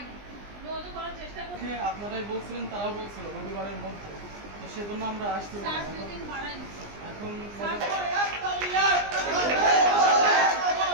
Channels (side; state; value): left; late; 20 ms